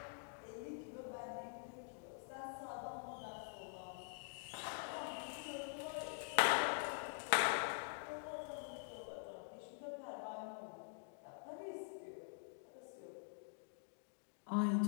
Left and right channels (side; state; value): right; silent; digital silence